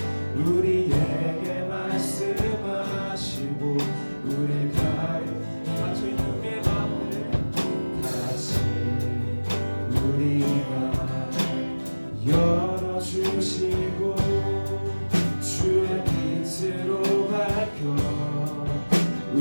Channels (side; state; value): both; inverted; correlation -1.00